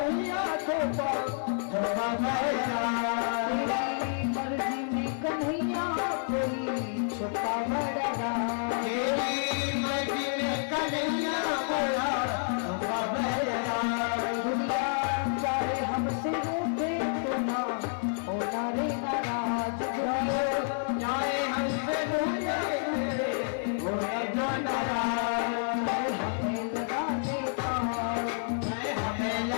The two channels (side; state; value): right; silent; 58 dB below the other